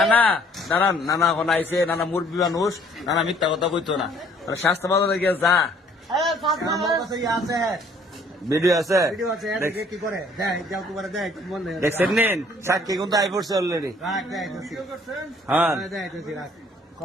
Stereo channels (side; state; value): both; normal; correlation 0.59